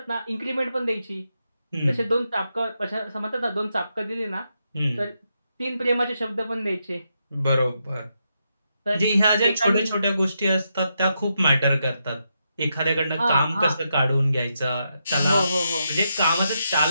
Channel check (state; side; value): inverted; both; correlation -0.83